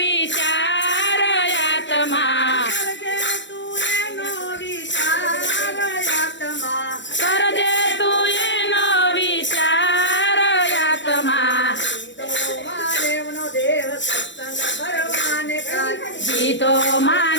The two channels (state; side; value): late; right; 0.53 ms